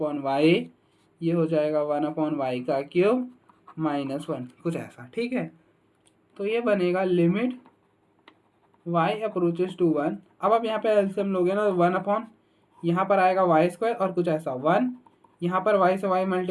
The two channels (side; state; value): both; identical; correlation 1.00